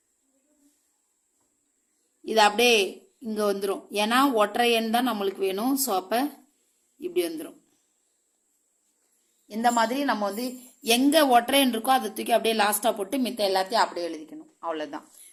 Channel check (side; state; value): both; identical; correlation 1.00